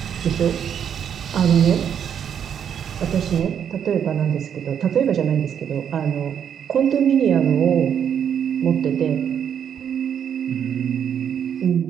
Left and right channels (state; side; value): quieter; left; 8.5 dB